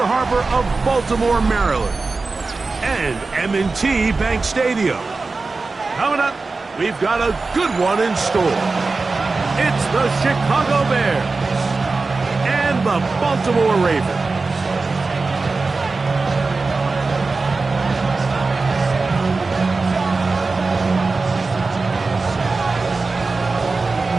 Harbor of Baltimore, Maryland, and M&T Bank Stadium. Coming up, we've got a good one in store. It's the Chicago Bears and the Baltimore Ravens.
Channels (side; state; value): left; quieter; 3.9 dB